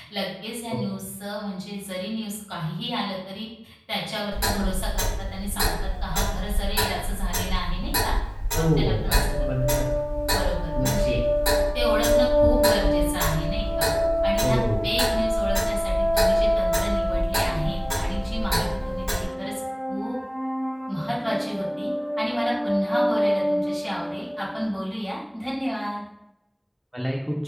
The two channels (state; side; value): identical; both; correlation 1.00